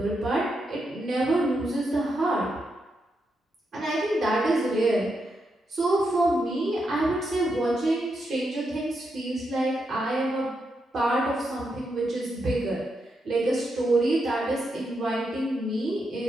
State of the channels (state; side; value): normal; both; correlation 0.83